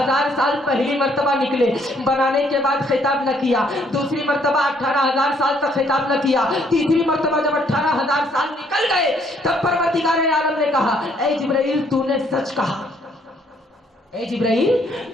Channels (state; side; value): normal; both; correlation 0.67